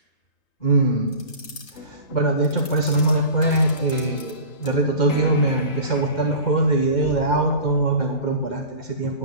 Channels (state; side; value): late; right; 3.3 ms